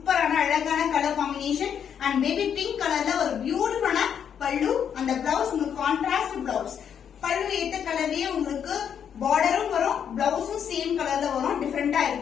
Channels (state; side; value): quieter; right; 8.2 dB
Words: அழகான color combination and baby pink கலர்ல ஒரு பியூட்டிஃபுல்லான பல்லு and the blouse உங்களுக்கு contrast blouse. பல்லு ஏத்த கலர்லயே உங்களுக்கு borderம் வரும், blouseம் சேம் கலர்ல வரும், டிஃபரெண்டா